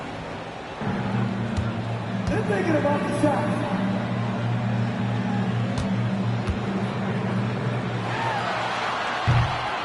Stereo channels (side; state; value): both; identical; correlation 1.00